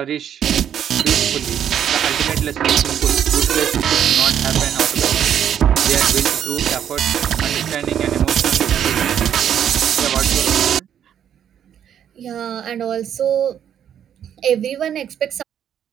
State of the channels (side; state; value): left; quieter; 9.4 dB